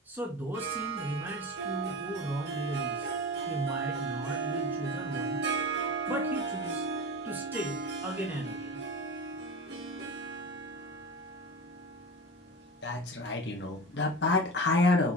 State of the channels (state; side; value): normal; both; correlation 0.29